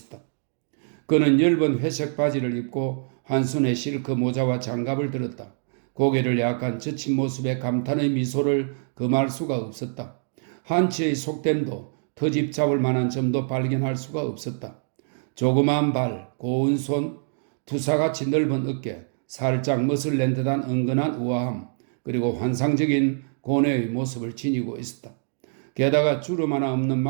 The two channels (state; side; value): silent; left; 62 dB below the other